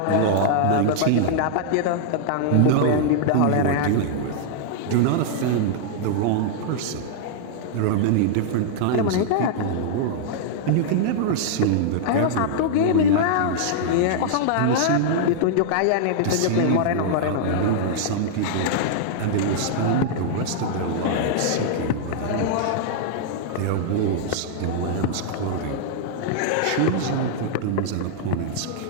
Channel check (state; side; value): different; both; correlation -0.01